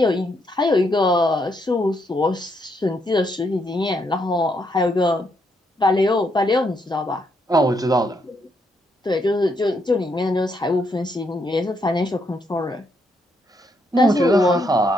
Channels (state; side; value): normal; both; correlation 0.76